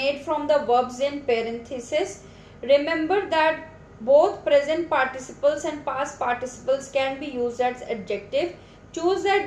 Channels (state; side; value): identical; both; correlation 1.00